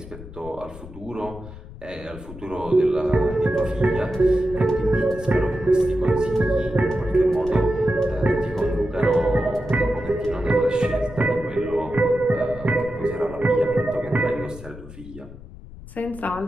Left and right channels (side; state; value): left; noise; rumble, 15 dB below the sound